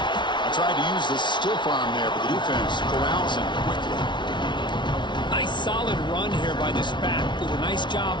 I tried to use the stiff arm there, but the defense corrals him quickly. Nice solid run here by this back. Did a nice job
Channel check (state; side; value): late; right; 0.23 ms